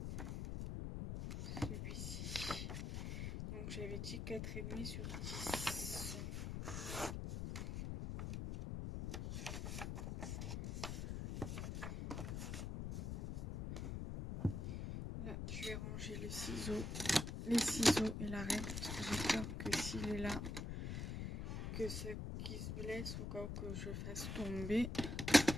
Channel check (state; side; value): noise; left; rumble, 3 dB below the sound